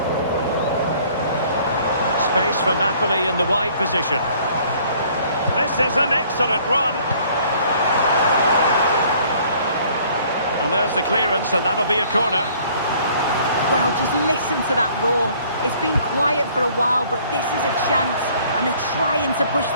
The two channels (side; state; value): both; inverted; correlation -0.57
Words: Space for Napoli in the wide position. This is an excellent run. And there's the clearance, and that'll be a corner. Well, just listen to that roar. It's been quiet for a while, but this is a chance. And they're trying to push